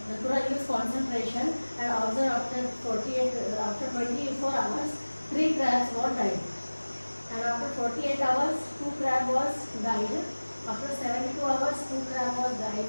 leaves concentration, and observe after 24 hours, 3 crab crabs were died. And after 48 hours, 2 crab was died. After 72 hours, 2 crab was died.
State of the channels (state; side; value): inverted; both; correlation -1.00